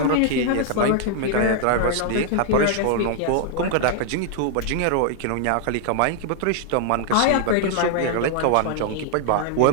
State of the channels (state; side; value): different; both; correlation -0.01